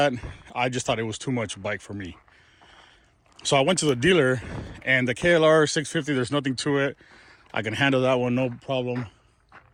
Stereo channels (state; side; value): identical; both; correlation 1.00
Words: I just thought it was too much bike for me. So I went to the dealer, and the KLR 650, there's nothing to it. I can handle that one, no problem.